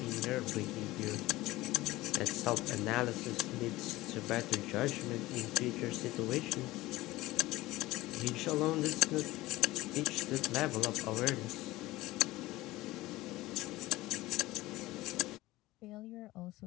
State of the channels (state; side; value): quieter; right; 18.2 dB